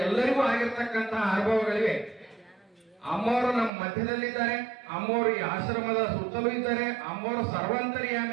ಎಲ್ಲರಿಗೂ ಆಗಿರ್ತಕ್ಕಂತಹ ಅನುಭವಗಳಿವೆ. ಅಮ್ಮವರು ನಮ್ಮ ಮಧ್ಯದಲ್ಲಿದ್ದಾರೆ, ಅಮ್ಮವರು ಈ ಆಶ್ರಮದ ಸುತ್ತಲೂ ಇದ್ದಾರೆ, ಅಮ್ಮವರು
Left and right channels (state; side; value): drops out; left; at 3.7 s